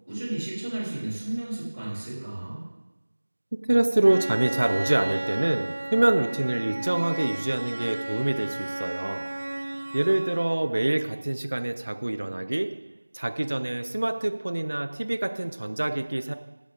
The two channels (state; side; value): inverted; both; correlation -1.00